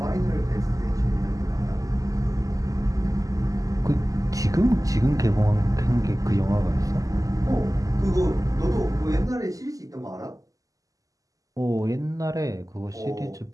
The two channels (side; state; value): left; late; 0.17 ms